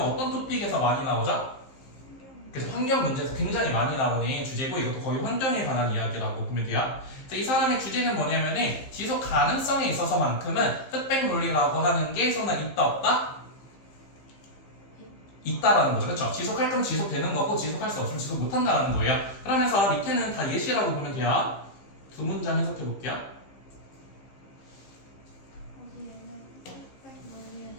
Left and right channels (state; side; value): late; right; 15 ms